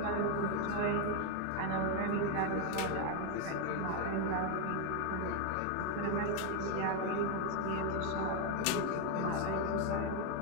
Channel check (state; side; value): different; both; correlation 0.01